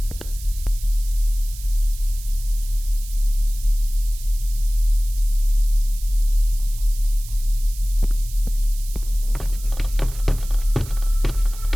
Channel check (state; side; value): noise; right; hiss, 16 dB below the sound